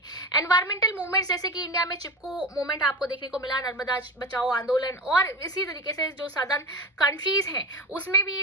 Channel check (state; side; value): normal; both; correlation 0.24